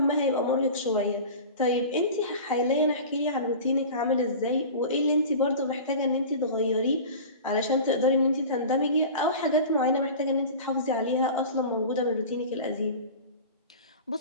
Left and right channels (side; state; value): both; inverted; correlation -0.35